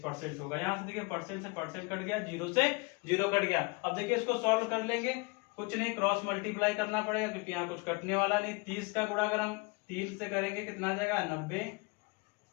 होगा। यहाँ से देखिए परसेंट से परसेंट कट गया, जीरो से जीरो कट गया। अब देखिए इसको सॉल्व कर लेंगे, कुछ नहीं क्रॉस मल्टीप्लाई करना पड़ेगा क्योंकि यहाँ कुछ कटने वाला नहीं। 30 का गुणा अगर हम 3 से करेंगे कितना आ जाएगा 90,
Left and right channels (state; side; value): quieter; right; 27.5 dB